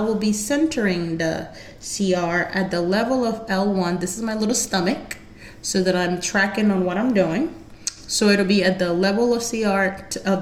be centering the CR at the level of L1. This is my little stomach, so that I'm tracking on what I'm doing. So it'll be at the level of CR,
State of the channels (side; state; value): both; identical; correlation 1.00